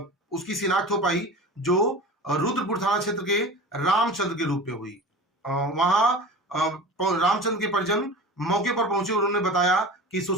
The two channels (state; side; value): normal; both; correlation 0.34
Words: उसकी शिनाख्त हो पाई, जो रुद्रपुर थाना क्षेत्र के रामचंद्र के रूप में हुई। वहां रामचंद्र के परिजन मौके पर पहुंचे। उन्होंने बताया कि